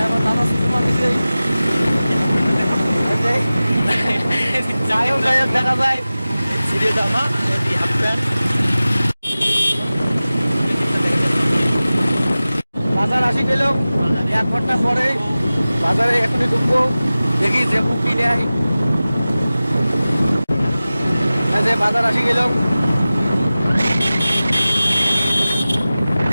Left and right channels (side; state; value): both; inverted; correlation -0.97